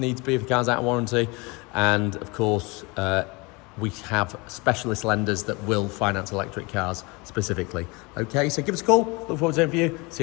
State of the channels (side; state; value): right; quieter; 26.4 dB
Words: if the car's out of warranty, and of course we have specialist lenders that will finance electric cars specifically. Okay, so give us a call. Look forward to hearing from you. See